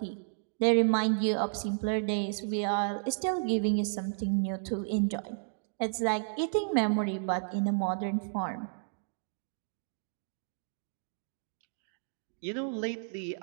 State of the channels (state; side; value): silent; left; digital silence